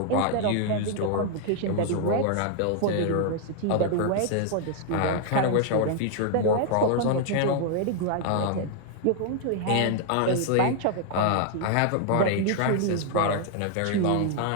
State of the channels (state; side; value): different; both; correlation 0.00